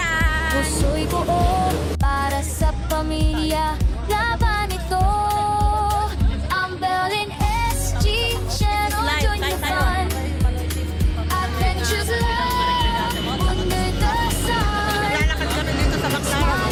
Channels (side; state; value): both; identical; correlation 1.00